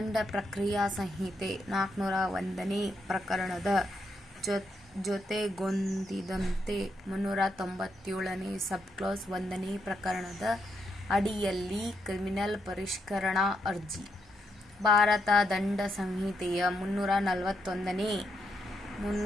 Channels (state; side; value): normal; both; correlation 0.79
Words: ಪ್ರಕ್ರಿಯಾ ಸಂಹಿತೆ 401ನೇ ಪ್ರಕರಣದ ಜೊತೆಗೊಂದಿದಂತೆ 397ನೇ ಸಬ್ಕ್ಲಾಸ್ 1ನೇ ಪ್ರಕರಣದ ಅಡಿಯಲ್ಲಿ ಕ್ರಿಮಿನಲ್ ಪರಿಷ್ಕರಣಾ ಅರ್ಜಿ. ಭಾರತ ದಂಡ ಸಂಹಿತೆಯ 341ನೇ,